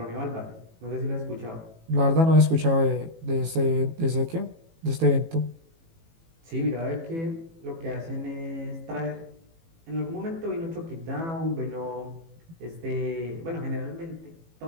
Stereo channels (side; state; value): left; late; 18 ms